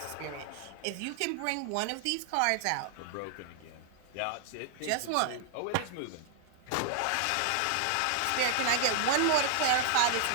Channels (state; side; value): different; both; correlation -0.01